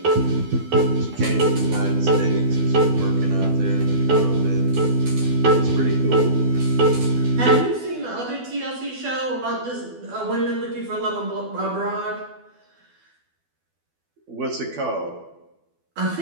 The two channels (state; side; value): late; left; 12 ms